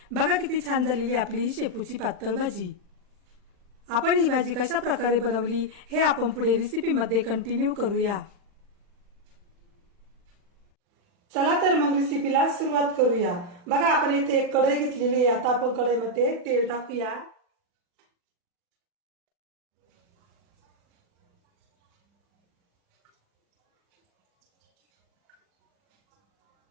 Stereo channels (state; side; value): late; left; 40 ms